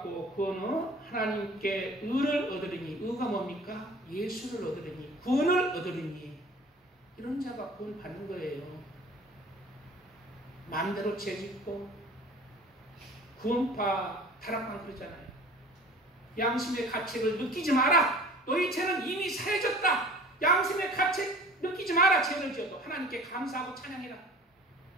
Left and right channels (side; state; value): both; normal; correlation 0.45